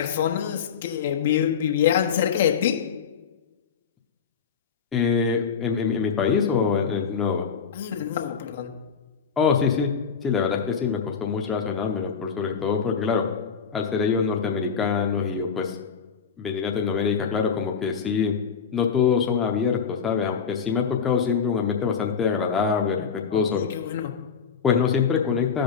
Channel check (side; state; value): right; quieter; 6.5 dB